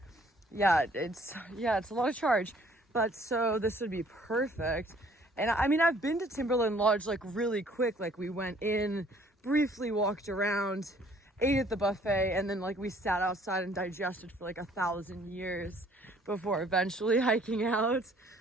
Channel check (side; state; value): both; normal; correlation 0.59